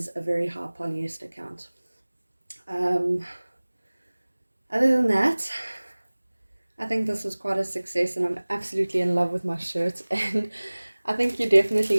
a very high polyester count. Other than that, I think this was quite a success, and I'm absolutely in love with my shirt. And I think you're definitely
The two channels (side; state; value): both; inverted; correlation -1.00